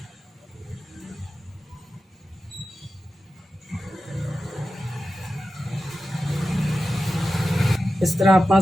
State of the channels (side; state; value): both; normal; correlation 0.93